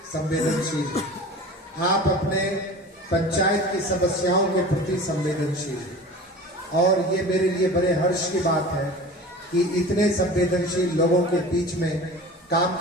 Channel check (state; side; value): normal; both; correlation 0.37